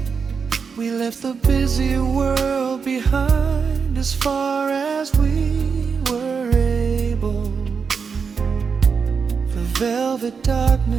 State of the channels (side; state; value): left; quieter; 5.7 dB